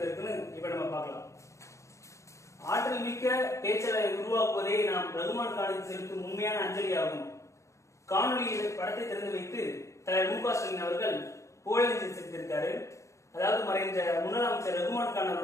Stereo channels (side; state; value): right; late; 0.14 ms